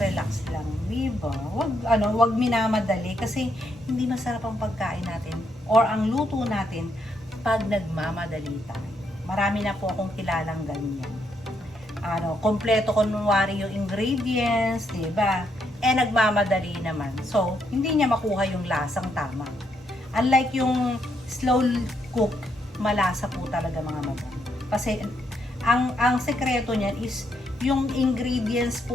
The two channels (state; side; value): normal; both; correlation 0.76